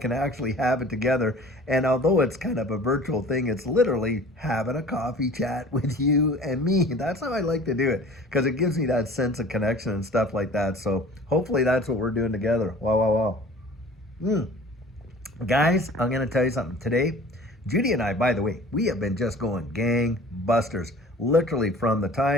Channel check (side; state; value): both; normal; correlation 0.45